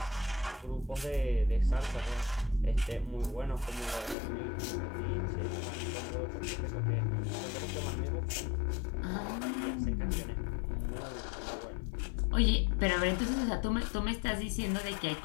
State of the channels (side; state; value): right; drops out; at 4.2 s